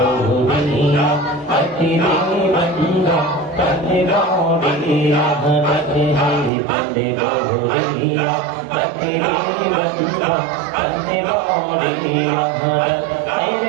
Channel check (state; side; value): drops out; left; at 6.5 s